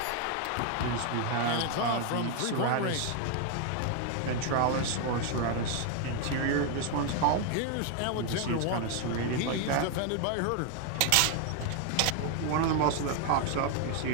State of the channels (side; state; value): both; different; correlation 0.00